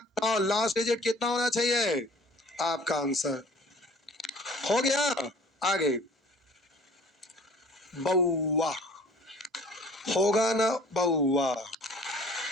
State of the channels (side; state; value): both; normal; correlation 0.50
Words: 9, लास्ट डिजिट कितना होना चाहिए? आपका आंसर हो गया। आगे बउआ होगा ना, बउआ